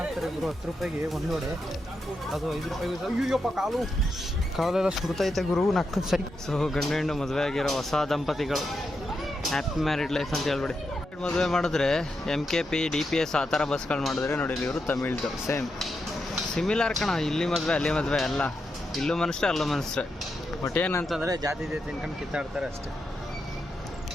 ಗುರು. 10 ರೂಪಾಯಿಗೆ ಒಂದು ವಡೆ, ಅದು 5 ರೂಪಾಯಿಗೆ. ಅಯ್ಯಪ್ಪ, ಕಾಲೆಲ್ಲ ಸುಡ್ತೈತೆ ಗುರು, ನಕ್ಕ ಸರಿ. ಸೊ ಗಂಡು ಹೆಣ್ಣು ಮದುವೆ ಆಗಿರೋ ಹೊಸ ದಂಪತಿಗಳು, ಹ್ಯಾಪಿ ಮ್ಯಾರಿಡ್ ಲೈಫ್ ಅಂತ ಹೇಳ್ಬಿಡಿ. ಮದುವೆ ಮಾಡಿದ್ರೆ MKP DPS ಆ ಥರ ಬಸ್ಗಳು ಮಾಡಿದ್ರೆ ನೋಡಿ, ಇವರು ತಮಿಳ್ದು ಸೇಮ್ ಸಿಮಿಲರ್ ಕಣ. ಇಲ್ಲಿ ಮದುವೆ ಅಲ್ಲಿ ಮದುವೆ ಎಲ್ಲ, ಇಲ್ಲೂ ಮನುಷ್ಯ ಅಲ್ಲೂ ಮನುಷ್ಯ. ಬಟ್ ಏನಂತಂದರೆ ಜಾತಿ ತಿನ್ಕೊಂಡು ಕಿತ್ತಾಡ್ತಾರೆ ಅಷ್ಟೇ.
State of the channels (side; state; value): both; normal; correlation 0.85